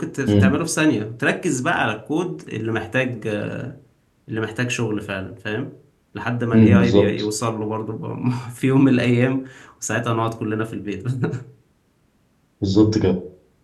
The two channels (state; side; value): identical; both; correlation 1.00